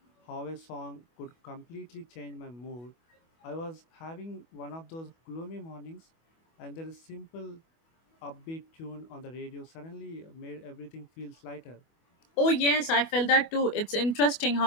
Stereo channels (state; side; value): late; right; 24 ms